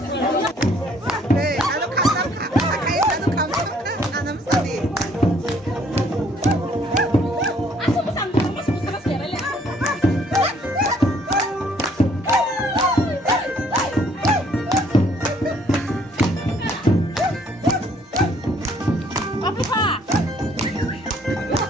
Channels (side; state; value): both; normal; correlation 0.63